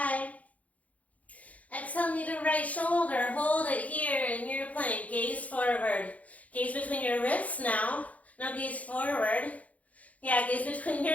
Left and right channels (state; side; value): late; right; 0.069 ms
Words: Exhale, knee to right shoulder. Hold it here in your plank. Gaze forward. Gaze between your wrists now. Now gaze forward. Yeah, gaze between